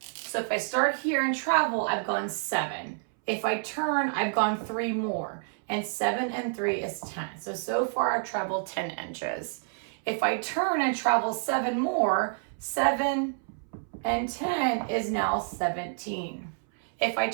if I start here and travel, I've gone 7. If I turn, I've gone 3 more. And 7 and 3 is 10. So far I've traveled 10 inches. If I turn and travel 7 more, 7 and 10 is now 17. If I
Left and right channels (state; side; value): silent; left; 59 dB below the other